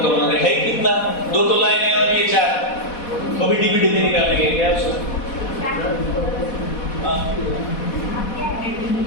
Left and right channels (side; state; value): right; late; 4.1 ms